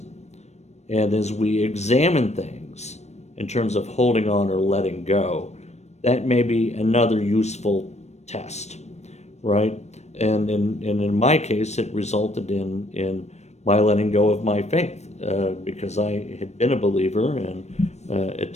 And as we examine things in terms of holding on or letting go, that may be another useful test, right? And in my case, it resulted in my letting go of my faith, because I had been a believer and at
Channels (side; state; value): right; late; 0.32 ms